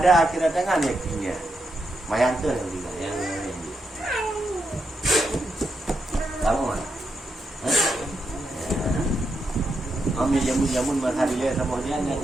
akhirat tangan yakinnya. Semayang tu yang tiga, yang kamu mana? Kami jamun-jamun berhari lihat sama dia nggak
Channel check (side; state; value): both; normal; correlation 0.83